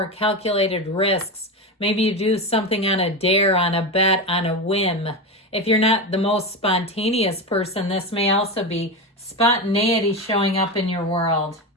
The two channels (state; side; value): normal; both; correlation 0.18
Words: calculated risks. Maybe you do something on a dare, on a bet, on a whim. If you're not the most spontaneous person, this may also be spontaneity showing up in your world.